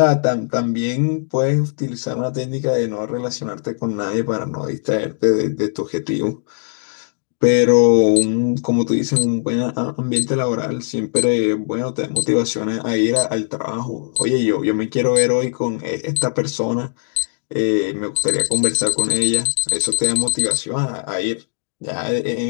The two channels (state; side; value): silent; right; digital silence